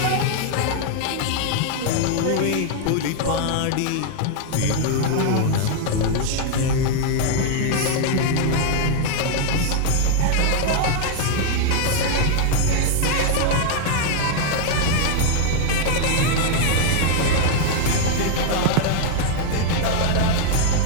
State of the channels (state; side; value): different; both; correlation 0.00